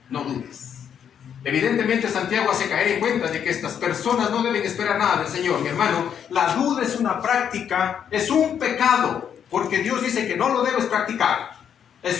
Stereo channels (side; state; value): right; quieter; 8.4 dB